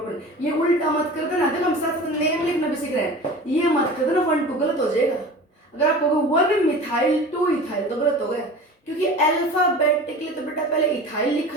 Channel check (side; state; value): both; normal; correlation 0.37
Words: ये उल्टा मत कर देना, देखो हम साथ नेम लिखना भी सीख रहे हैं, ये मत कर देना 1 2 गलत हो जाएगा। अगर आप कहोगे 1 मिथाइल 2 इथाइल तो गलत हो गया, क्योंकि अल्फाबेटिकली तो बेटा पहले इथाइल